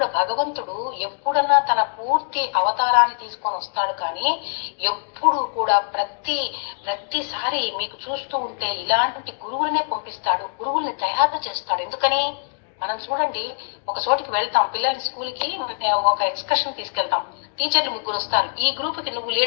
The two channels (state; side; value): silent; right; digital silence